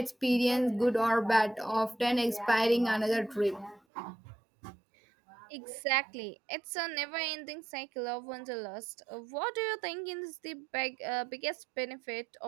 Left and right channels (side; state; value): left; drops out; at 3.8 s